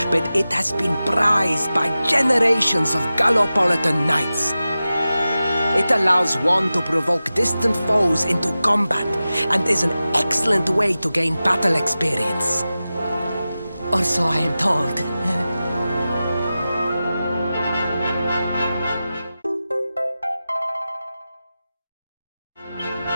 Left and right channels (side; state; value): both; inverted; correlation -0.94